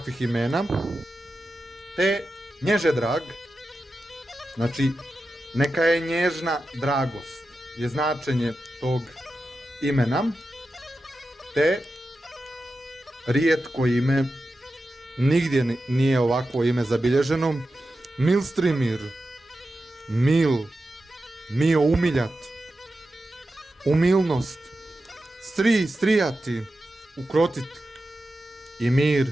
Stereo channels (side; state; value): both; normal; correlation 0.91